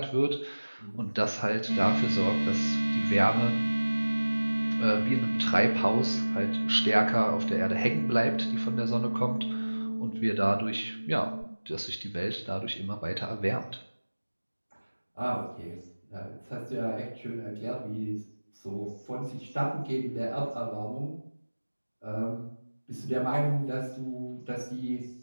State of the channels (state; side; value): inverted; both; correlation -1.00